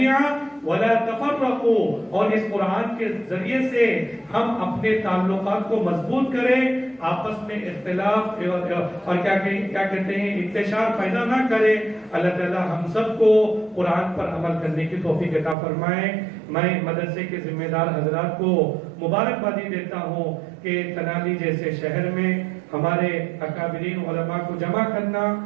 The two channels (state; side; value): drops out; left; at 15.6 s